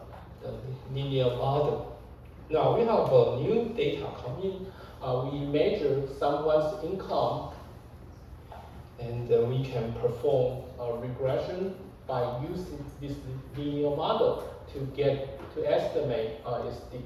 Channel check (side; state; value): both; identical; correlation 1.00